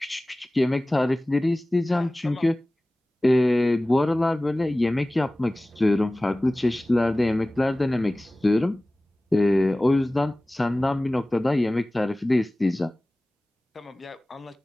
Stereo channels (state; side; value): normal; both; correlation 0.98